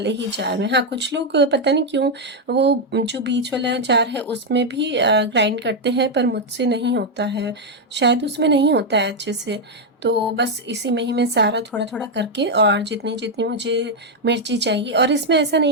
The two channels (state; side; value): normal; both; correlation 0.02